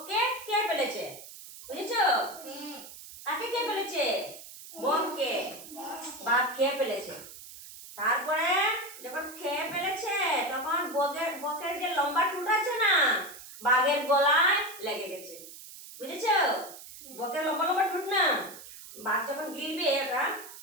খেয়ে ফেলেছে। বুঝেছো? কাকে খেয়ে ফেলেছে? বককে। বাঘ খেয়ে ফেলেছে। তারপরে যখন খেয়ে ফেলেছে, তখন বকের যে লম্বা টুট আছে না, বাঘের গলায় লেগে গেছে। বুঝেছো? বকের লম্বা লম্বা টুট না, বাঘ যখন গিলবে ওটা,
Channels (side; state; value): right; noise; hiss, 15 dB below the sound